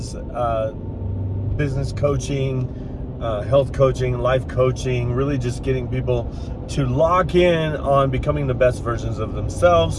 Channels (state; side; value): identical; both; correlation 1.00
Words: business coaching, health coaching, life coaching, really just getting people to lock in on becoming the best versions of